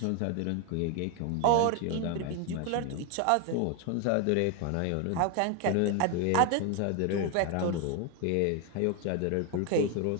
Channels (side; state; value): both; different; correlation 0.01